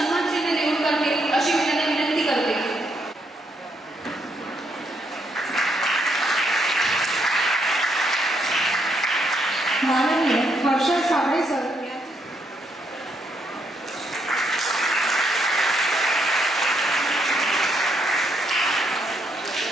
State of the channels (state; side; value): normal; both; correlation 0.75